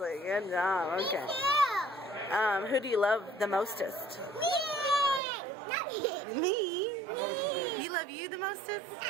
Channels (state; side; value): drops out; left; at 5.2 s